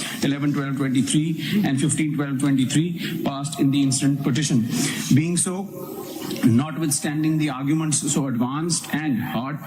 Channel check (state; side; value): identical; both; correlation 1.00